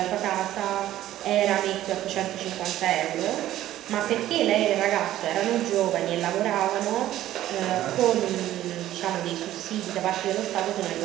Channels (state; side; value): quieter; left; 13.6 dB